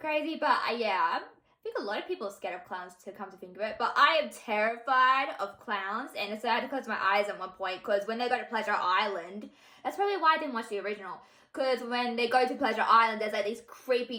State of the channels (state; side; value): identical; both; correlation 1.00